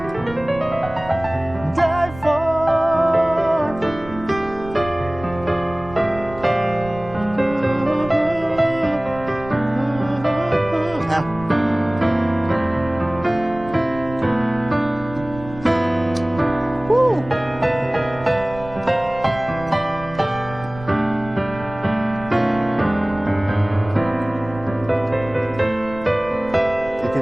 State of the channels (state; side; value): noise; right; rumble, 15 dB below the sound